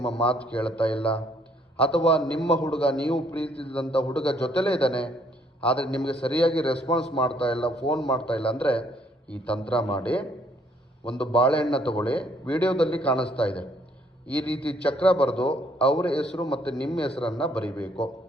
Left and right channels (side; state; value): both; normal; correlation 0.66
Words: ಮಾತು ಕೇಳ್ತಾ ಇಲ್ಲ, ಅಥವಾ ನಿಮ್ಮ ಹುಡುಗ ನೀವು ಪ್ರೀತಿಸಿದಂಥ ಹುಡುಗ ಜೊತೆಲೇ ಇದ್ದಾನೆ ಆದರೆ ನಿಮಗೆ ಸರಿಯಾಗಿ ರೆಸ್ಪಾನ್ಸ್ ಮಾಡ್ತಾ ಇಲ್ಲ, ಫೋನ್ ಮಾಡ್ತಾ ಇಲ್ಲ ಅಂದರೆ ಈ ತಂತ್ರ ಮಾಡಿ. ಒಂದು ಬಾಳೆಹಣ್ಣು ತಗೊಳ್ಳಿ, ವಿಡಿಯೋದಲ್ಲಿ ಕಾಣಿಸ್ತಾ ಇದೆ. ಈ ರೀತಿ ಚಕ್ರ ಬರೆದು ಅವರ ಹೆಸರು ಮತ್ತು ನಿಮ್ಮ ಹೆಸರನ್ನು ಬರಿಬೇಕು.